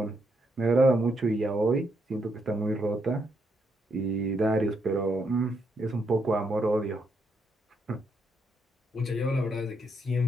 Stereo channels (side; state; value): both; normal; correlation 0.78